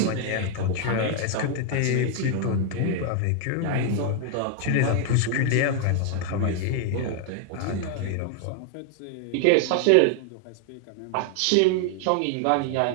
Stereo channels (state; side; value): different; both; correlation 0.00